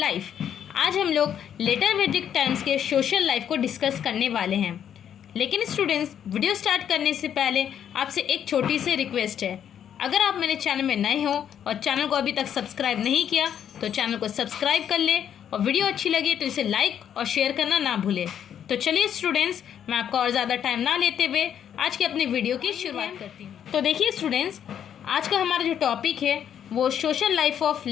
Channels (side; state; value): right; quieter; 9.2 dB